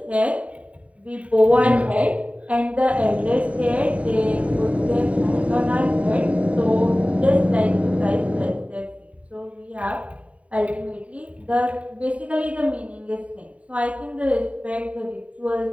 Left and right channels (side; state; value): left; late; 0.066 ms